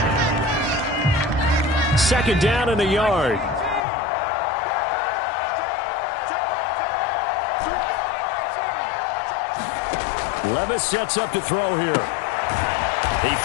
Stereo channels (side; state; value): right; drops out; at 3.9 s